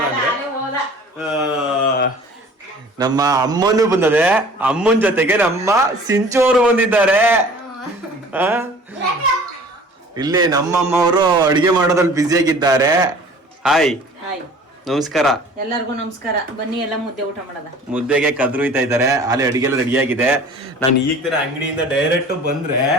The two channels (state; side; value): normal; both; correlation 0.47